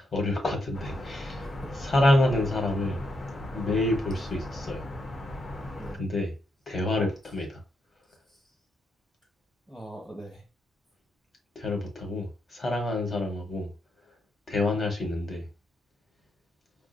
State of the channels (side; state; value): both; normal; correlation 0.81